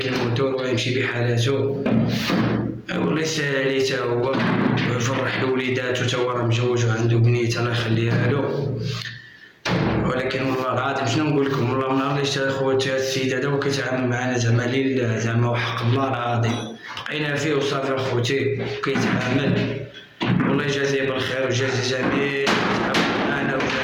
الموتور ويمشي بحالاتو والله يسهل عليه تا هو ويفرح لوليداتو تا هو راه مجوج وعنده بنيته الله يخليها له. ولكن والله العظيم شنو نقول لكم والله من نهار اللي شتا خوتي هاد السيد هذا وكيتعامل معنا زعما لله زعما وحق الله العظيم بقينا فيه وصافي اخوتي كيتعامل. والله يجازيه بالخير ويجازي جميع معنا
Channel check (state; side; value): identical; both; correlation 1.00